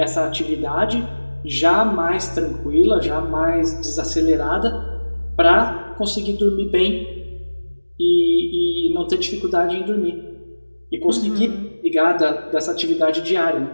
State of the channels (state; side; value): inverted; both; correlation -1.00